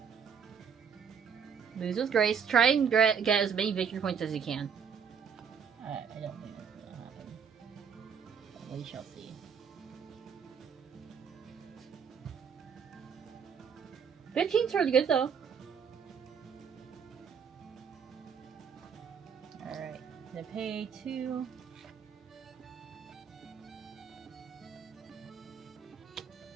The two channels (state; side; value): quieter; left; 6.9 dB